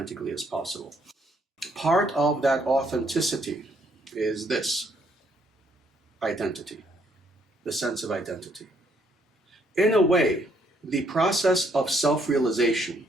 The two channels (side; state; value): both; normal; correlation 0.69